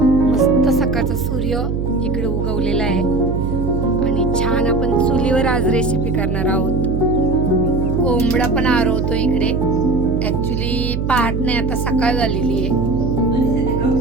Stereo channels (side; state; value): right; noise; hum, 1 dB below the sound